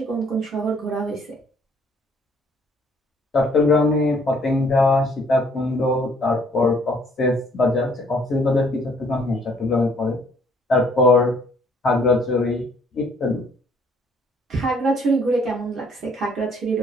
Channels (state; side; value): normal; both; correlation 0.62